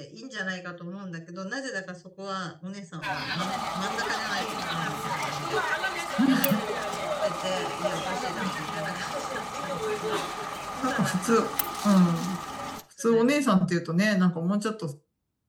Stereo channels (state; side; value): identical; both; correlation 1.00